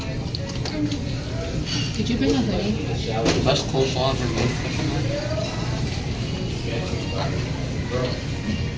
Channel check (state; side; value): identical; both; correlation 1.00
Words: Could you bring a hoodie? Best coleslaw ever made.